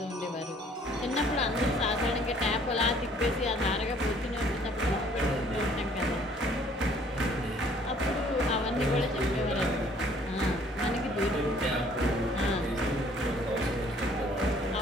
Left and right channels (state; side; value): normal; both; correlation 0.59